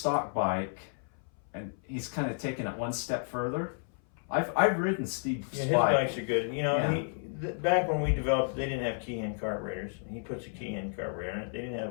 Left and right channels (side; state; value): right; silent; 57 dB below the other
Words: bike and he's kind of taken it one step further. I've ridden Steve's Yeah, his bike. bikes are good. You know, Yeah. back when we developed, they didn't have key-hand carburetors. He puts a key-hand carburetor in it. He's